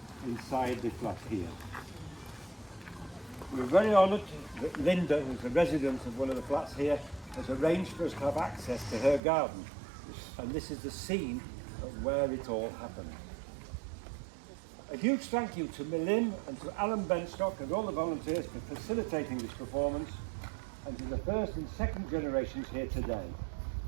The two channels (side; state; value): left; drops out; at 9.2 s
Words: inside the flat here. We're very honoured that Linda, who's a resident of one of the flats here, has arranged for us to have access to her garden. And this is the scene of where it all happened. A huge thank you to Millim and to Alan Benstock and all the volunteers for facilitating this performance, and to the first and second generations here today.